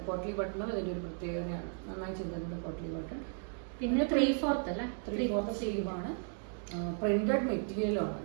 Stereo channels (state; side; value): silent; left; 54 dB below the other